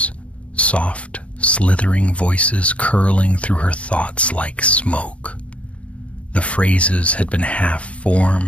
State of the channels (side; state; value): right; late; 0.063 ms